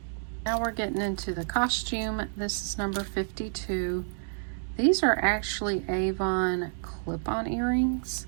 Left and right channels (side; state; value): left; silent; digital silence